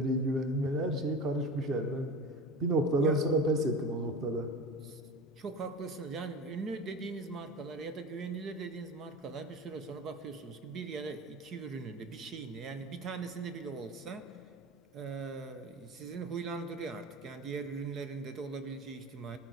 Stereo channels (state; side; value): normal; both; correlation 0.32